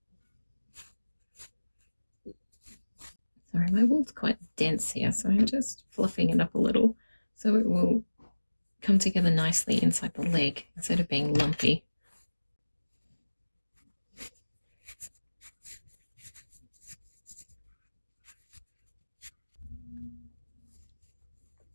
Sorry, my wool's quite dense here, so I'm just fluffing it up a little so it will come together nicely inside the leg instead of being lumpy.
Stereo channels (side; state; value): both; inverted; correlation -1.00